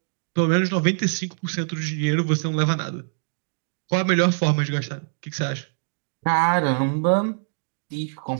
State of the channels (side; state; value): left; silent; digital silence